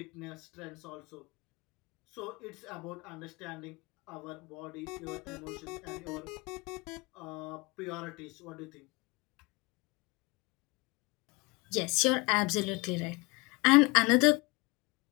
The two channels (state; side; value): quieter; right; 26.1 dB